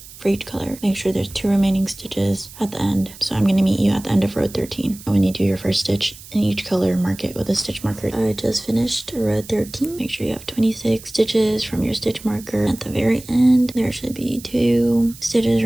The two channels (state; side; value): noise; right; hiss, 18 dB below the sound